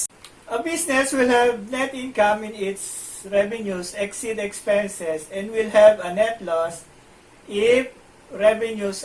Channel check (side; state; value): both; identical; correlation 1.00